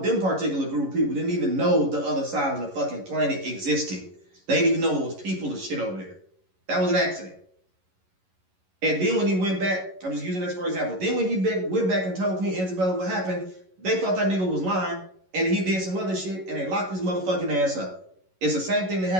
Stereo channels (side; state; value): left; late; 11 ms